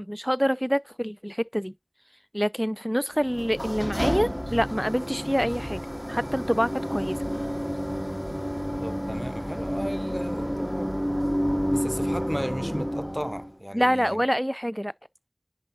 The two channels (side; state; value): both; identical; correlation 1.00